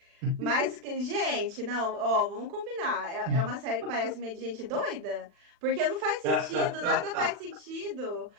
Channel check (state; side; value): late; left; 40 ms